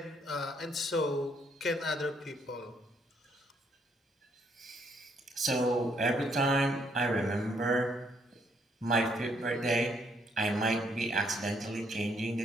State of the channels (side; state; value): both; normal; correlation 0.70